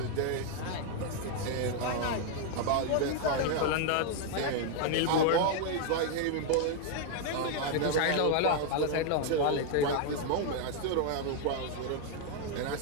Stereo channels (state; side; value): different; both; correlation 0.00